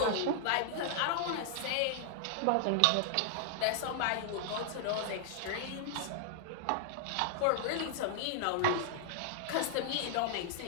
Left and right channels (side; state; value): both; different; correlation 0.00